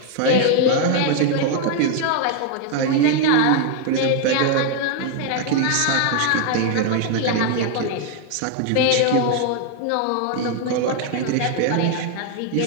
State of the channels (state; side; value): different; both; correlation 0.00